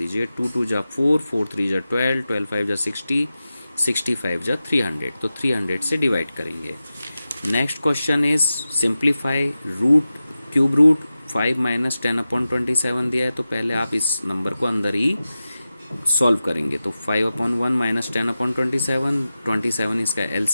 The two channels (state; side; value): inverted; both; correlation -0.94